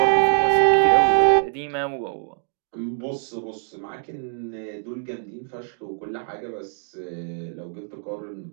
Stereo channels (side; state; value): left; silent; digital silence